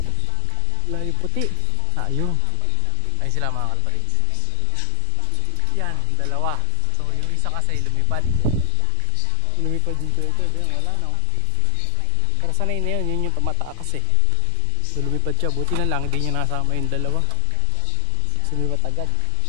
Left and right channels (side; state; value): both; different; correlation 0.00